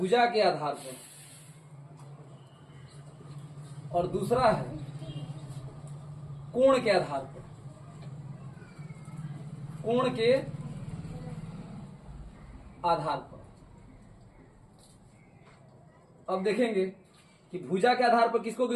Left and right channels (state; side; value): identical; both; correlation 1.00